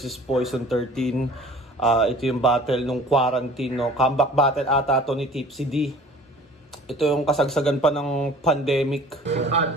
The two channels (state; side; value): normal; both; correlation 0.47